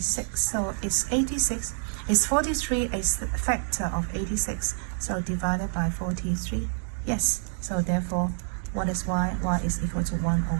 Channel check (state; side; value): silent; left; digital silence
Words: So it's 86. Is 43 a factor of 86? So divided by 43. Yes. So therefore, what is y? Y is equal to 1